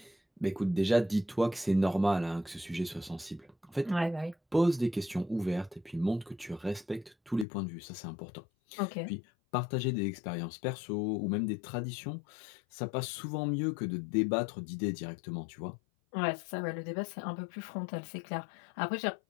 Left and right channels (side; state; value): right; drops out; at 7.5 s